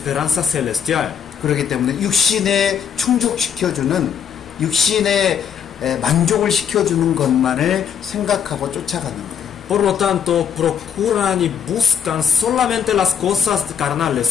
celestial. 그렇기 때문에 육신에 충족시켜주는 육신에 만족을 시켜주는 것만을 생각하고 쫓아가는 거예요. Por lo tanto, procuran y buscan solamente las cosas carnales,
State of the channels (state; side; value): quieter; right; 7.9 dB